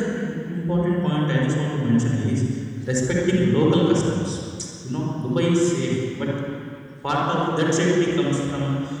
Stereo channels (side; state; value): both; identical; correlation 1.00